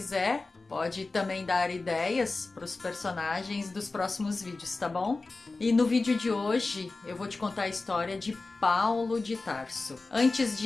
pode também dar ideias para os personagens dos próximos vídeos, tá bom? E no vídeo de hoje eu vou te contar a história de Paulo de Tarso. Antes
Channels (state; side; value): quieter; right; 3.6 dB